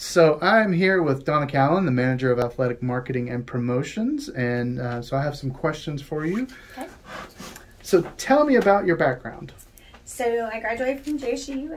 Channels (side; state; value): both; identical; correlation 1.00